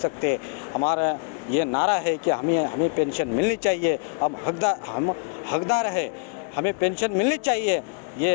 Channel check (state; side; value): quieter; right; 36.5 dB